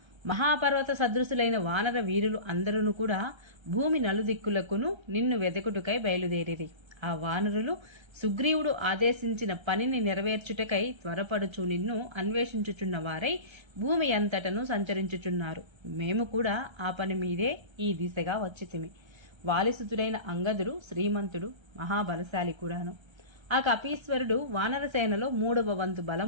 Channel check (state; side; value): late; left; 1.3 ms